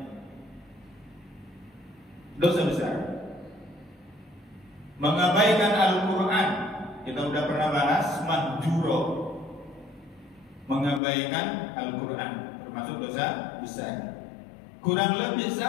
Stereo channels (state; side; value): drops out; right; at 11.0 s